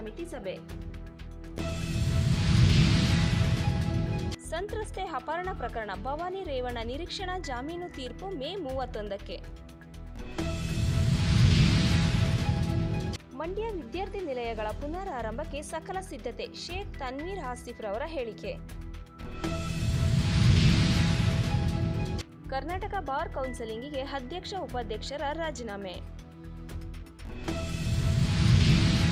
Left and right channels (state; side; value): identical; both; correlation 1.00